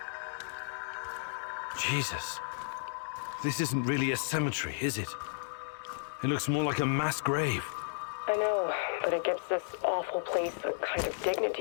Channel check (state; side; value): silent; right; digital silence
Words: Jesus. This isn't really a cemetery, is it? It looks more like a mass grave. I know, but it gives this awful place a kind of